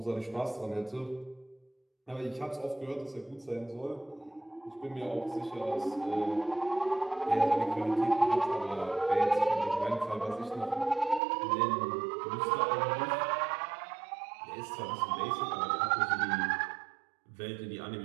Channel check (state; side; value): drops out; left; at 11.2 s